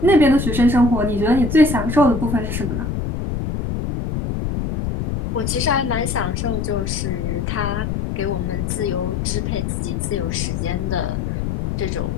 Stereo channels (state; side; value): noise; left; rumble, 2 dB below the sound